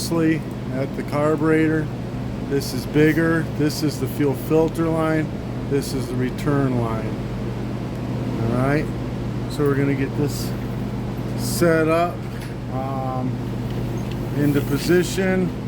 at the carburetor, this is bigger. This is the fuel filter line. This is the return line. Alright, so we're going to get this set up into position.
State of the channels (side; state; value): both; identical; correlation 1.00